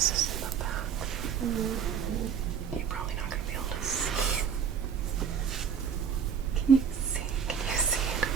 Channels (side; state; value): left; quieter; 7.3 dB